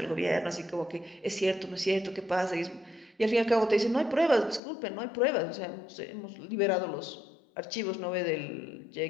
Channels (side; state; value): right; drops out; at 4.6 s